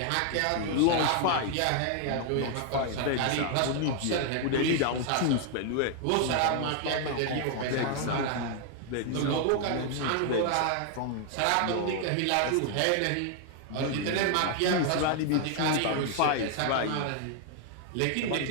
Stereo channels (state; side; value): different; both; correlation 0.00